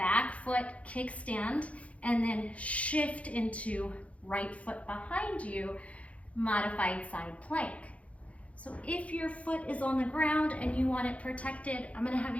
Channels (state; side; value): late; right; 0.065 ms